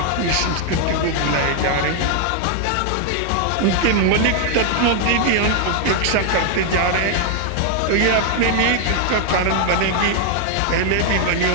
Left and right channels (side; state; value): both; different; correlation 0.00